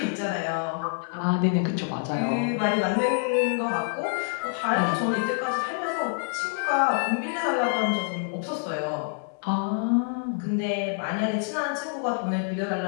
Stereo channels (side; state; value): right; silent; 55 dB below the other